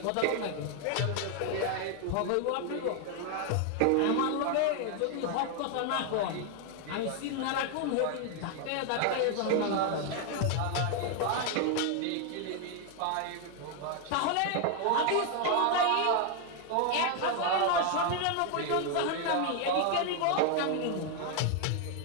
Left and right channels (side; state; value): both; different; correlation 0.00